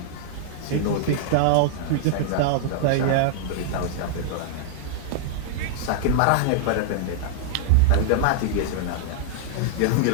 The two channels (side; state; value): both; different; correlation -0.01